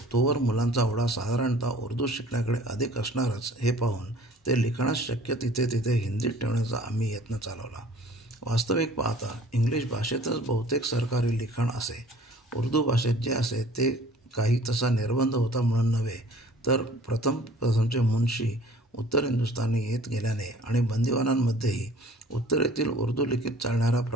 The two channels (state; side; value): normal; both; correlation 0.50